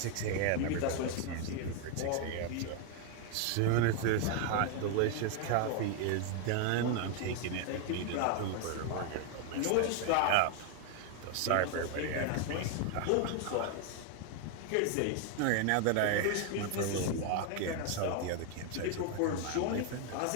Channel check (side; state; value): both; different; correlation 0.01